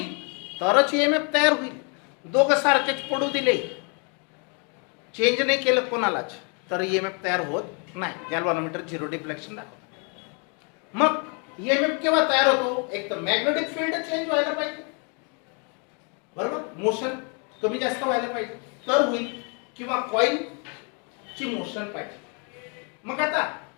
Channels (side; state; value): right; quieter; 36.5 dB